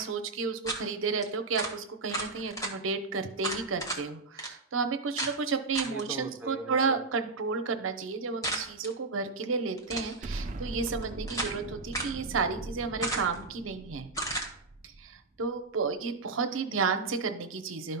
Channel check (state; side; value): quieter; left; 3.8 dB